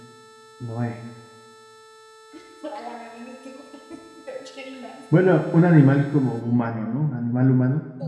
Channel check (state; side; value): identical; both; correlation 1.00